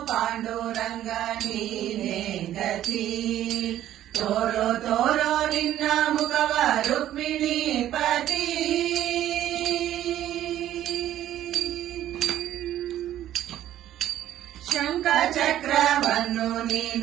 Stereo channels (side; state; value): left; quieter; 12.4 dB